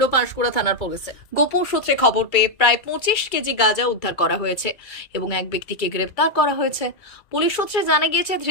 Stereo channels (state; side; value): late; right; 2.2 ms